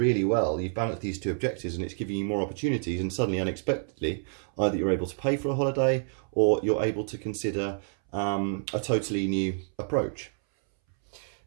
well. You've balanced these two objectives and it's giving you more opportunities, and suddenly, unexpectedly, either you're able to pay for a holiday or you're able to consider a totally new approach.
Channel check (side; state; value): left; silent; 59 dB below the other